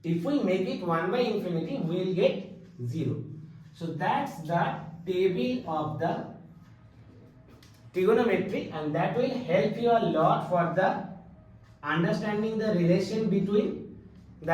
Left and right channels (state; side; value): identical; both; correlation 1.00